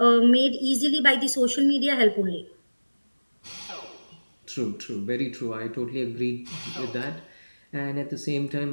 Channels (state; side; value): inverted; both; correlation -1.00